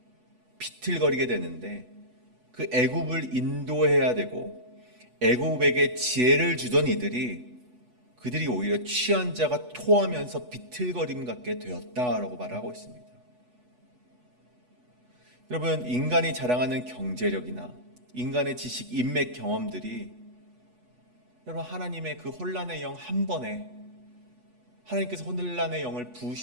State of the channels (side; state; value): left; late; 8.1 ms